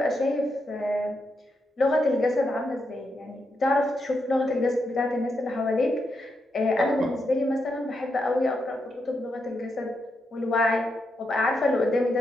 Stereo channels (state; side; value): normal; both; correlation 0.83